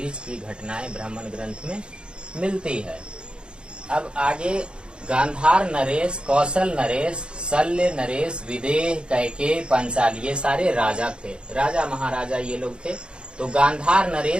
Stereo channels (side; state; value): left; late; 0.053 ms